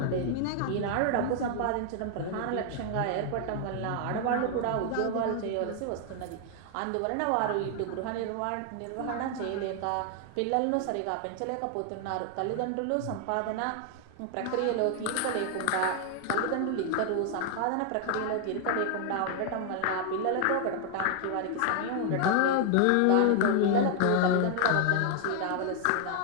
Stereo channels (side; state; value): both; different; correlation 0.00